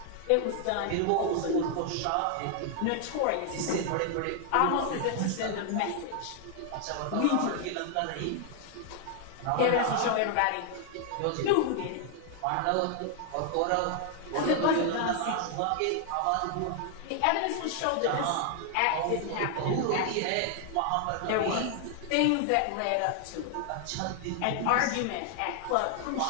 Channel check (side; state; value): both; different; correlation 0.00